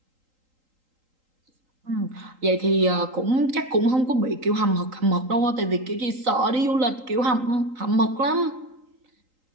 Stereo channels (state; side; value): late; left; 3.8 ms